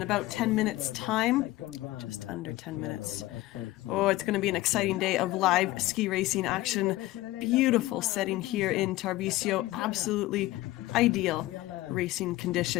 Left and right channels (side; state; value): right; quieter; 17.6 dB